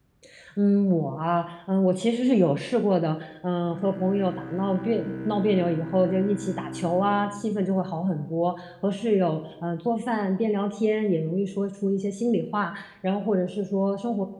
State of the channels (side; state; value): both; identical; correlation 1.00